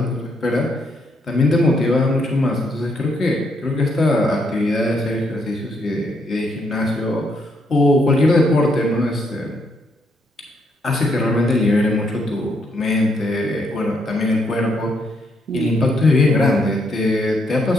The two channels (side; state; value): both; normal; correlation 0.75